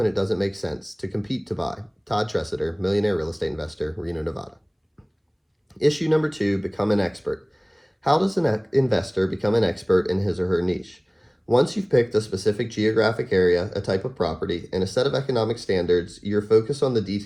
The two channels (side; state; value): both; identical; correlation 1.00